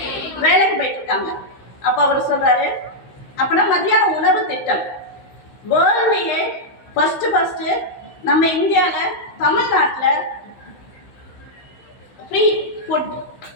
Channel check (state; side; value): late; right; 15 ms